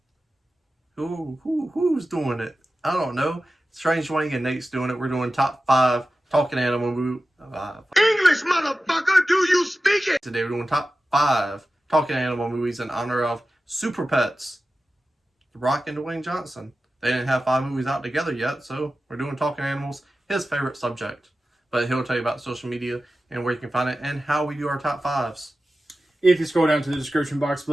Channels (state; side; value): normal; both; correlation 0.94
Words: Who's doing it? I don't know. Strange Wang and Nate's doing it. We're doing top 5 talking animal movie. English, motherfucker, do you speak it? Today we're doing top 5 talking animal movies in honor of Super Pets, The Rock and Dwayne Johnson. They didn't have 5 movies out together yet, so we're doing talking animals, his favorite subject. But he'll tell you about social media and where you can find it and how we do our top 5s. If you scroll down to the description box